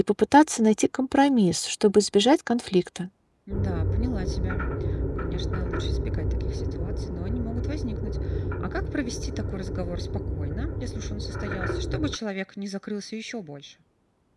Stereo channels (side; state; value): both; identical; correlation 1.00